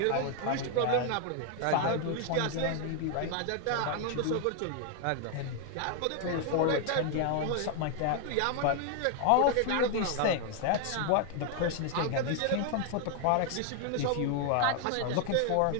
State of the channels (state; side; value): different; both; correlation 0.00